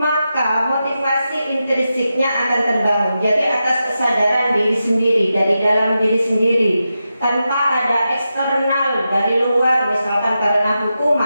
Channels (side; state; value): both; inverted; correlation -0.89